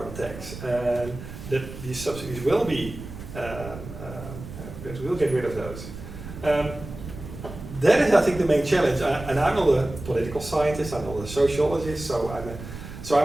tax, and that these subsidies will be, that we'll get rid of those? That is, I think, the main challenge. And I'm not a political scientist, I'm not a sociologist, so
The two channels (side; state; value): right; noise; rumble, 12 dB below the sound